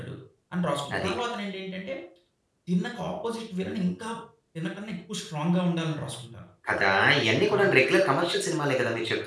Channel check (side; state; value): both; identical; correlation 1.00